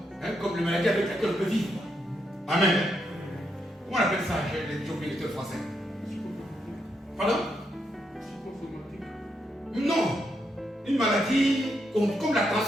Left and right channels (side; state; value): both; normal; correlation 0.80